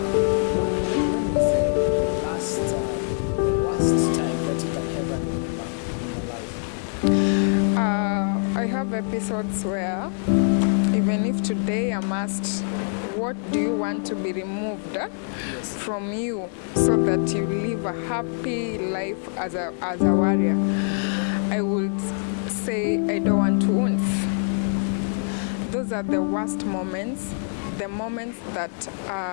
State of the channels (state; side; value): silent; right; digital silence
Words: when was the worst time that you can ever remember in your life? I have episodes where Even if today I'm asked, what do you want to be removed from you so that you live a happy life as a warrior, I would say I don't want wounds. Those are the worst moments, the moments that